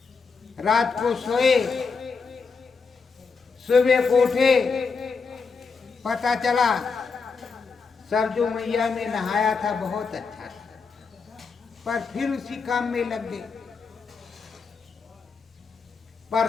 रात को सोए, सुबह को उठे, पता चला सरजू मैया में नहाया था, बहुत अच्छा था, पर फिर उसी काम में लग गए, पर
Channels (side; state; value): right; quieter; 4.9 dB